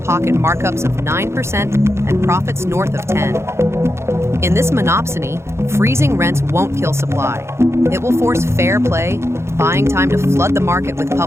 markups of 9% and profits north of 10%. In this monopsony, freezing rents won't kill supply. It will force fair play, buying time to flood the market with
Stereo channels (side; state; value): left; late; 0.13 ms